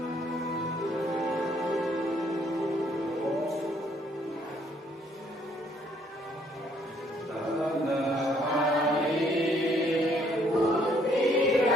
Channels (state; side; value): normal; both; correlation 0.66